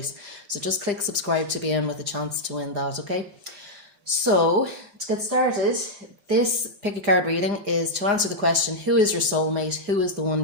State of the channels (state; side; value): late; left; 4.9 ms